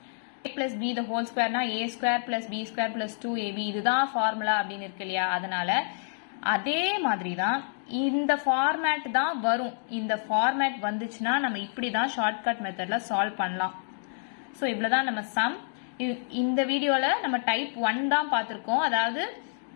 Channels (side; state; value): right; silent; digital silence